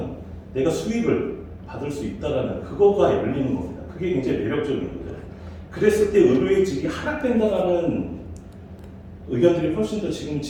내가 수익을 받을 수 있다라는 그거가 열리는 겁니다. 그게 굉장히 매력적인 거죠. 그랬을 때 의료의식이 하락된다라는 의견들이 훨씬 더 지금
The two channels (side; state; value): both; identical; correlation 1.00